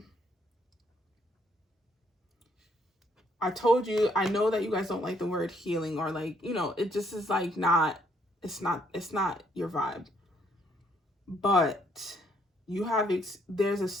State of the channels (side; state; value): both; normal; correlation 0.68